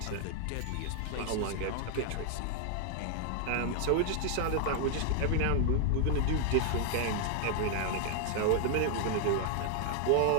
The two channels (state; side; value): different; both; correlation 0.00